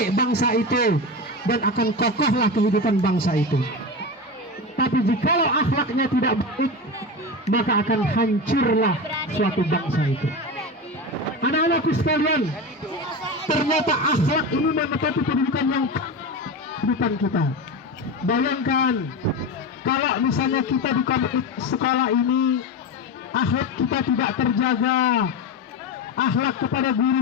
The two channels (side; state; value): both; normal; correlation 0.22